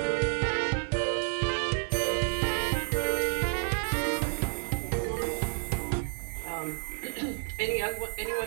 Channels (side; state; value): left; silent; digital silence